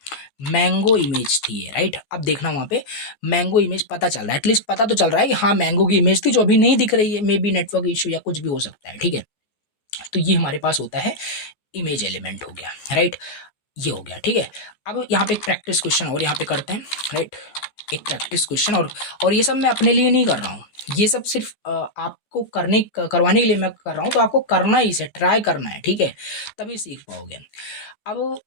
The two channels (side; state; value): right; late; 15 ms